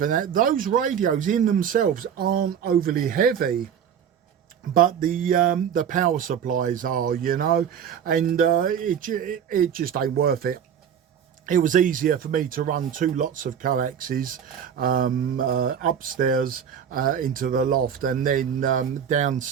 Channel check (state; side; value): quieter; left; 8.3 dB